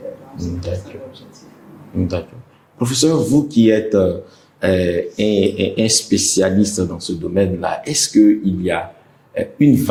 Donc, c'est ça l'objectif. D'accord. Professeur, vous qui êtes un spécialiste dans ce domaine-là, est-ce qu'il y a une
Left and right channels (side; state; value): both; identical; correlation 1.00